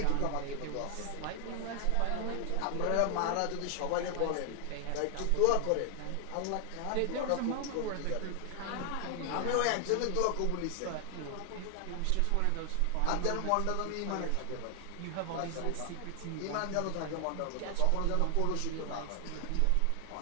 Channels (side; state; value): both; different; correlation 0.00